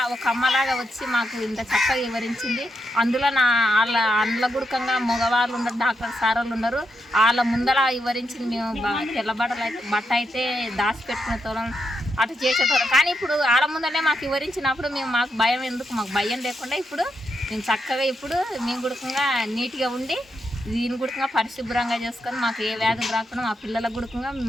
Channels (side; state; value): both; normal; correlation 0.83